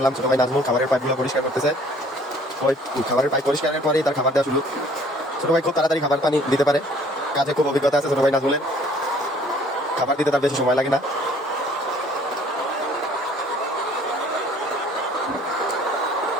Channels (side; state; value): both; normal; correlation 0.56